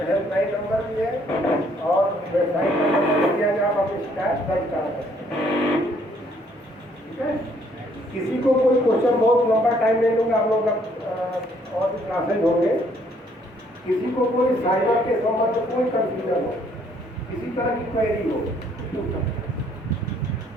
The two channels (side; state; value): both; normal; correlation 0.65